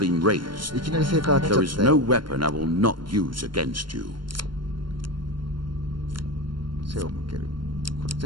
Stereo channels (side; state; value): left; late; 0.72 ms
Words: raised. いきなり成果が当たっ There ち is ゃった no よ。 weapon I will not use against you. 背を向ける。これ